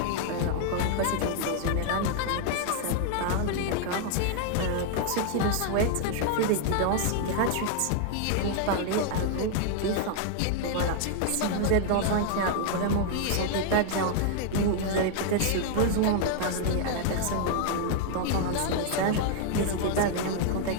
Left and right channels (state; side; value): different; both; correlation 0.00